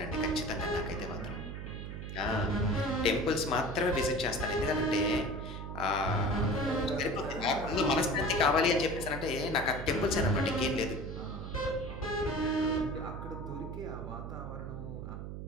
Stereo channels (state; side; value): noise; right; hum, 7 dB below the sound